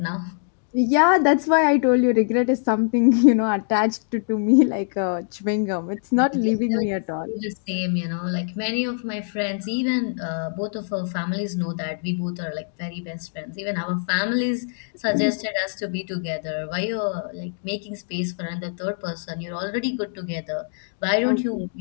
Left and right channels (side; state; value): right; silent; digital silence